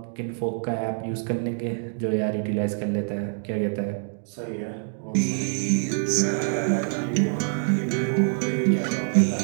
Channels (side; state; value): left; silent; digital silence